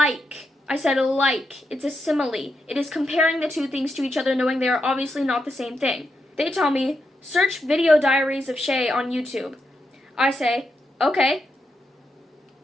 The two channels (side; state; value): both; normal; correlation 0.84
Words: I said, like. It's a simile. It is comparing the two things to each other, knowing they are obviously not the same thing. They tell me, search video diaries of Shay on YouTube. I say, okay.